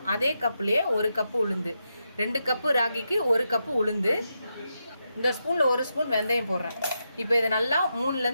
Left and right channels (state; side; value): inverted; both; correlation -0.85